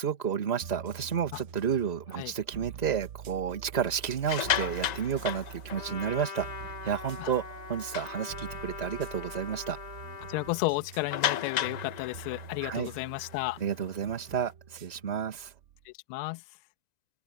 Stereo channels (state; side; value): late; right; 1.9 ms